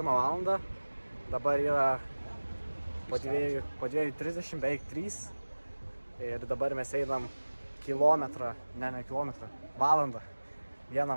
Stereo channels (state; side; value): inverted; both; correlation -1.00